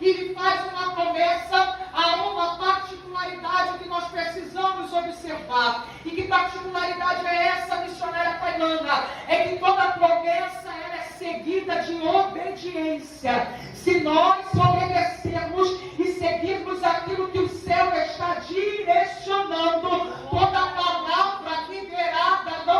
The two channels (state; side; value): identical; both; correlation 1.00